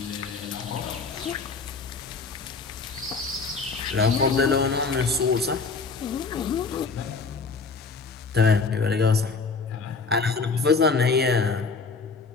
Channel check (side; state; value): right; quieter; 4.5 dB